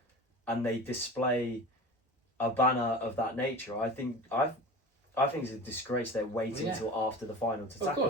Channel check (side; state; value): both; normal; correlation 0.34